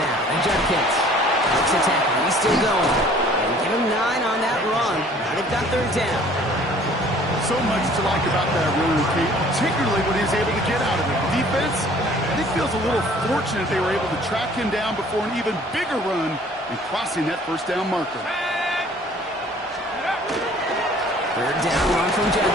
and Judkins looks a tackle. He's still going. And give him 9 on that run. Now they've got third down. So much to like about that run, Kate, particularly when he was able to get out of it. The defense, I think, feels a little fortunate they were able to track him down before an even bigger run and crossing that first down marker. Third down run from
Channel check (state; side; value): normal; both; correlation 0.54